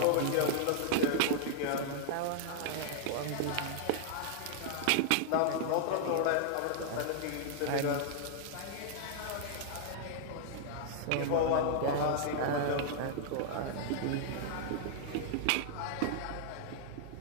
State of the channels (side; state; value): both; different; correlation -0.01